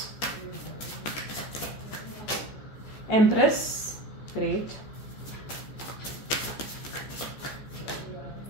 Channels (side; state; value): right; late; 14 ms